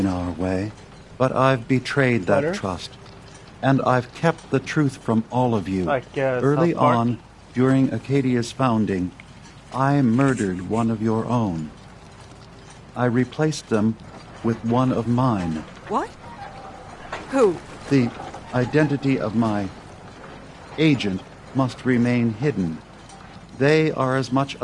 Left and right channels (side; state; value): both; identical; correlation 1.00